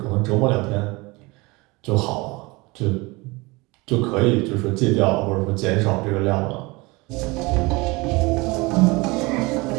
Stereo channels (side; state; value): left; quieter; 24.3 dB